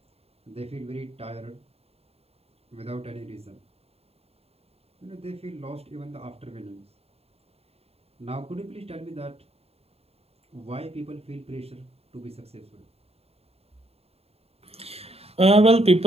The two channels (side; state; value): left; late; 0.29 ms